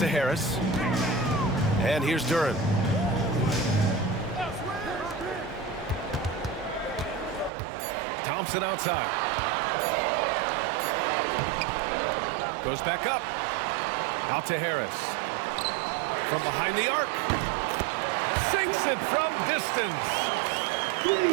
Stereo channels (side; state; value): left; drops out; at 7.5 s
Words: Harris. And here's Duren. Thompson outside. Goes back up. Out to Harris. From behind the arc. Sinks it from distance.